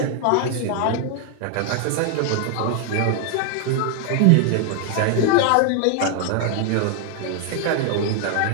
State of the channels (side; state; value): both; different; correlation 0.00